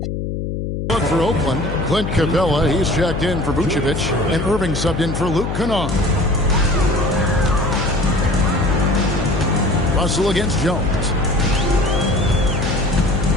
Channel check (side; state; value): left; noise; hum, 4 dB below the sound